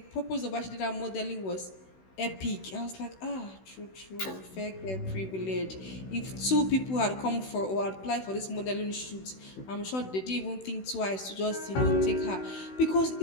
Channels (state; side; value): late; right; 16 ms